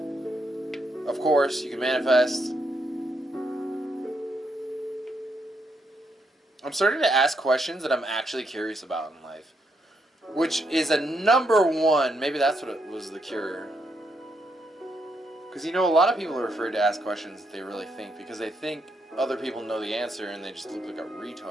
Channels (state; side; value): normal; both; correlation 0.78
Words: of course, you can manifest. I'm starting to ask questions that I'm actually curious about in life. Which is a number one. Maybe that's what it was the cure. Because, you know, a lot of people are afraid to ask questions that they really think. Because they think other people know the answer and they just look like a